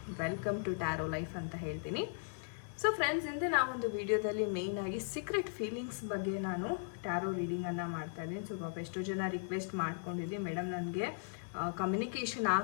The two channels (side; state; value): right; silent; digital silence